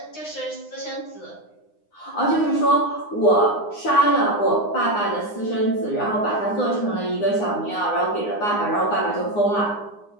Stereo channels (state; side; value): late; right; 9.7 ms